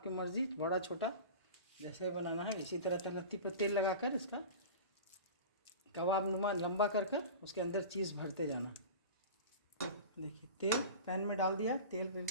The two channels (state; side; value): inverted; both; correlation -0.34